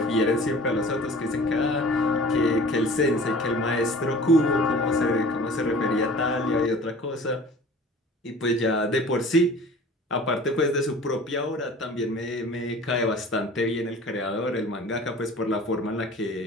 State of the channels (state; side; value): normal; both; correlation 0.44